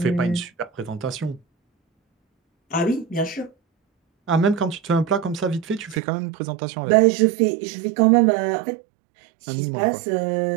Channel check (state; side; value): drops out; left; at 6.0 s